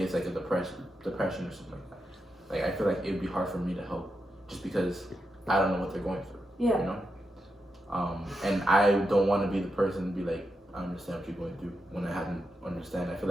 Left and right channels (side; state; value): both; normal; correlation 0.86